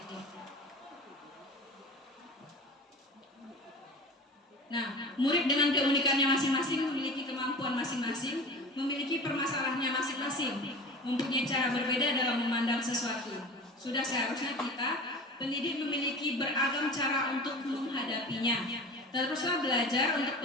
itu. Nah, murid dengan keunikannya masing-masing memiliki kemampuan masing-masing, memiliki permasalahannya masing-masing, mempunyai cara berbeda dalam memandang sesuatu. Sudah seharusnya kita, pendidik memiliki beragam cara untuk menghadapinya. Teruslah belajar untuk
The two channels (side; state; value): both; normal; correlation 0.36